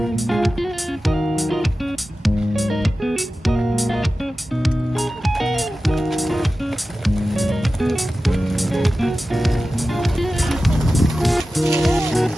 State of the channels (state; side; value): normal; both; correlation 0.94